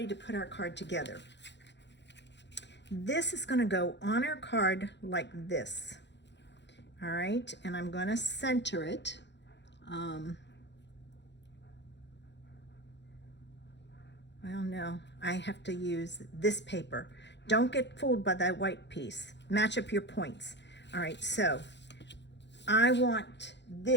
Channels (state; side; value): late; right; 0.51 ms